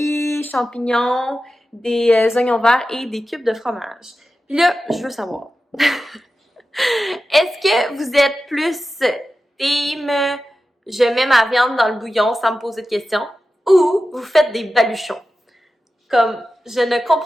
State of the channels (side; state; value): both; normal; correlation 0.93